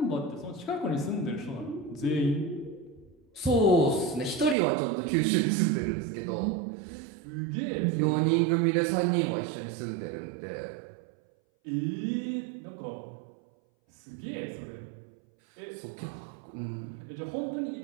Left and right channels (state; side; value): drops out; left; at 4.5 s